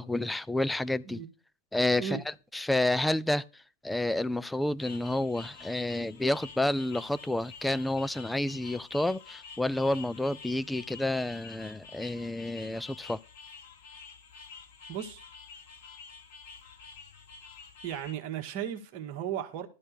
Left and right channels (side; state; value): both; normal; correlation 0.90